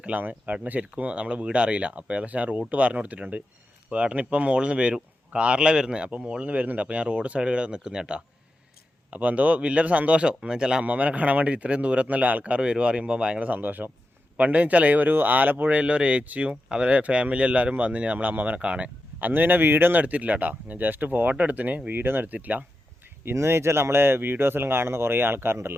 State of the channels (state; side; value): normal; both; correlation 0.90